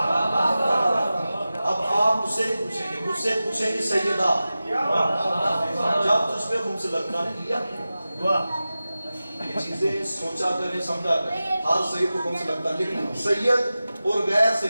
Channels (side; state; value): both; inverted; correlation -0.95